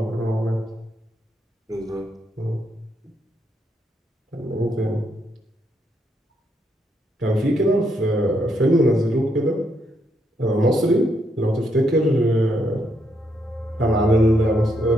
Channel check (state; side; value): normal; both; correlation 0.76